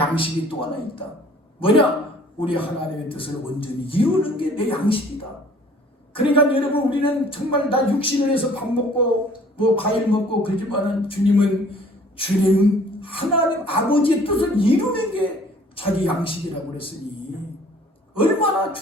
또 하나 있다. 뭐냐? 우리 하나님의 뜻을 온전히 이루는 게 내 양식이다. 그러니까 여러분, 우리는 정말 나 육신을 해서 밥 먹고 뭐 과일 먹고 그러지만은 주님 하나님 아버지의 뜻을 이루는 게 자기 양식이라고 그랬으니 얼마나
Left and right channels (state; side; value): normal; both; correlation 0.54